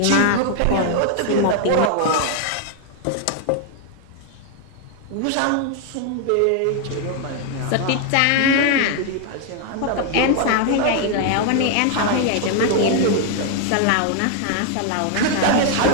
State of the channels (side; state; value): both; different; correlation 0.00